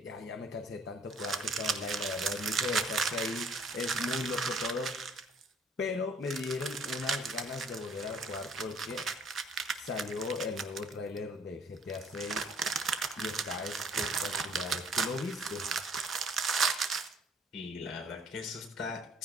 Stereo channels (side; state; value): both; normal; correlation 0.58